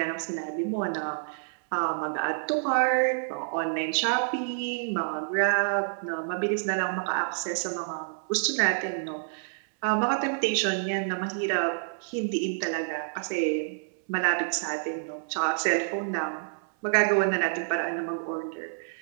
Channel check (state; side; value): silent; left; 59 dB below the other